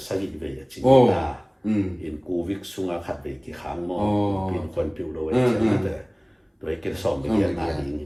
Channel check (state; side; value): identical; both; correlation 1.00